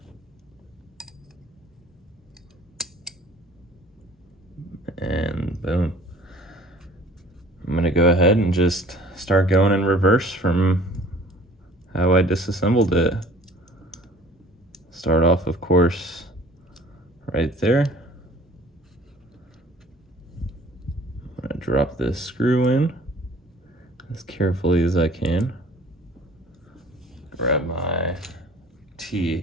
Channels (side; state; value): both; normal; correlation 0.51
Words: And boom. I'm gonna go ahead and just start going in reverse from how I disassembled it. Start off, of course, right there. I'm gonna drop this screw in as carefully as I can. Grab my